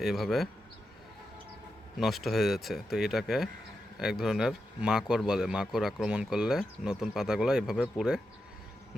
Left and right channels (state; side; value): normal; both; correlation 0.88